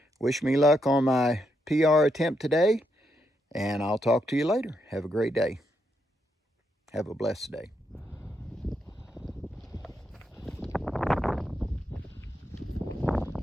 wish me luck on my PR attempt today, and I'll talk to you later. Have a great day. Have a blessed day.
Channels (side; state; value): both; normal; correlation 0.80